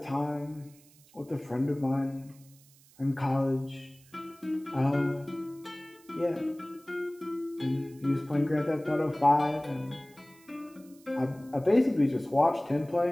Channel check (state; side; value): noise; right; hiss, 27 dB below the sound